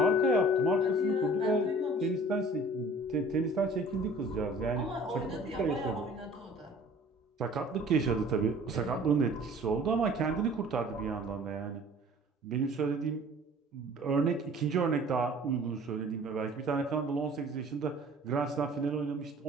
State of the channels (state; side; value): normal; both; correlation 0.49